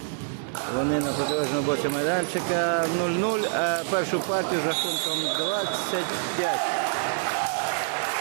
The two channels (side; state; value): left; silent; digital silence